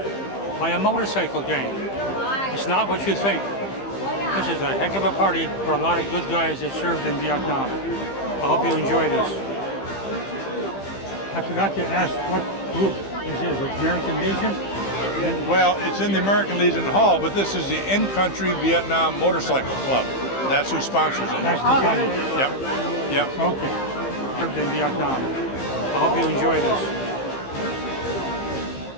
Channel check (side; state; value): right; late; 15 ms